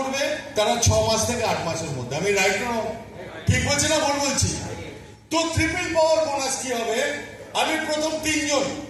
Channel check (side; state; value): both; identical; correlation 1.00